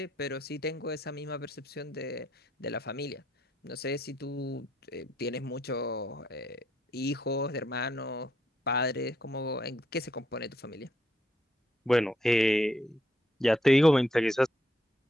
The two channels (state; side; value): normal; both; correlation 0.74